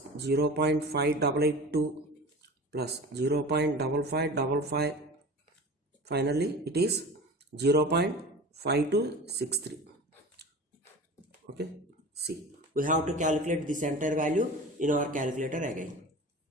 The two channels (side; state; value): both; normal; correlation 0.35